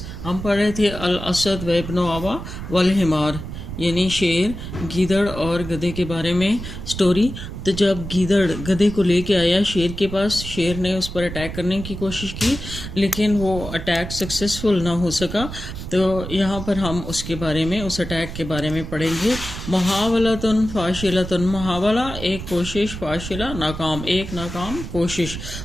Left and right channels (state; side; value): noise; right; rumble, 9 dB below the sound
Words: ہم پڑھ رہے تھے الاسد و ابن آوا والحمار، یعنی شیر، گیدڑ اور گدھے کے بارے میں سٹوری۔ تو جب گیدڑ گدھے کو لے کے آیا شیر کے پاس، شیر نے اس پر اٹیک کرنے کی کوشش کی لیکن وہ اٹیک سکسیسفل نہ ہو سکا۔ تو یہاں پر ہم اس کے بارے میں، اس اٹیک کے بارے میں پڑھیں گے۔ محاولتن فاشلتن، محاولہ ایک کوشش، فاشلہ ناکام، ایک ناکام کوشش۔